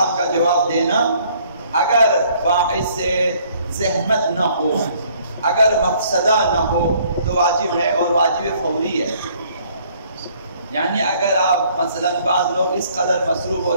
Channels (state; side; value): inverted; both; correlation -0.61